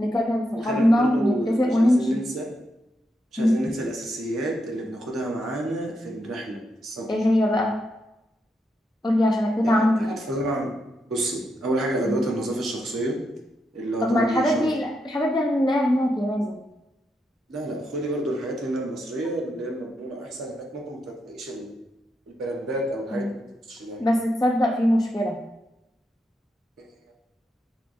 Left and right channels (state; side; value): normal; both; correlation 0.83